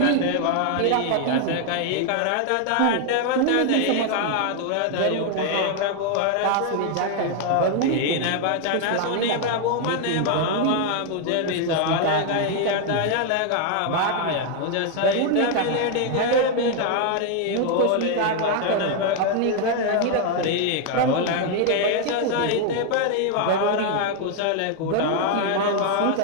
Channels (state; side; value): different; both; correlation 0.00